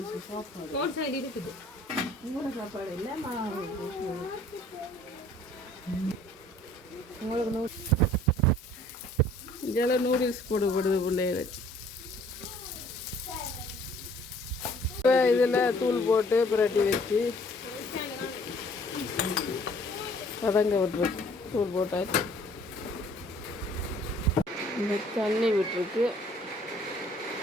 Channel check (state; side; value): normal; both; correlation 0.57